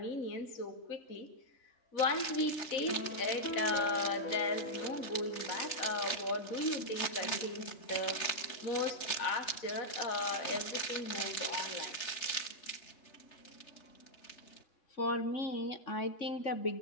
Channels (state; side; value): late; right; 3.3 ms